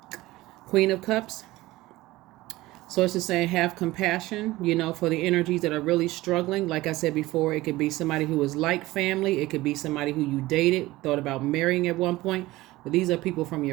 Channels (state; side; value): quieter; left; 18.4 dB